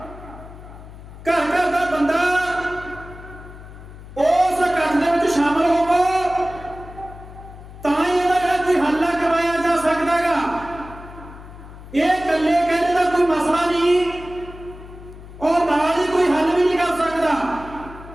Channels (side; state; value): left; noise; hum, 16 dB below the sound